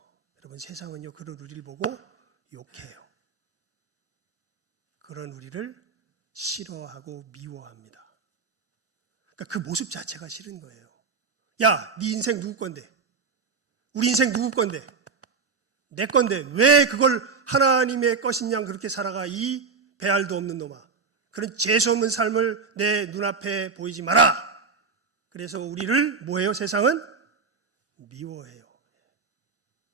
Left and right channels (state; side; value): quieter; left; 4.9 dB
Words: 여러분 세상은요 그런 우리를 보고 욕해요. 그런 우리를 싫어하고 미워합니다. 그러니까 그 모습 자체가 싫은 거예요. 야, 네 인생 누구 건데? 우리 인생 누구 건데? 내 건데 왜 그걸 하나님의 것인 양 그렇게 살아가 이 배알도 없는 놈아. 그런 재수 없는 삶을 내 눈앞에 보이지 마라. 그래서 우리를 뭐해요? 세상은 미워해요.